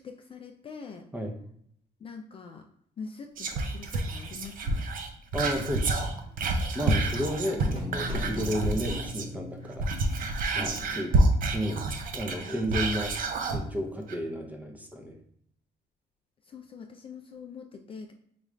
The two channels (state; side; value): normal; both; correlation 0.57